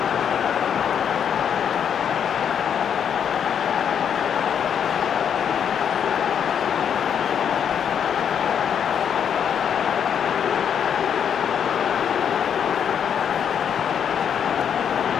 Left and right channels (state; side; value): quieter; right; 8.1 dB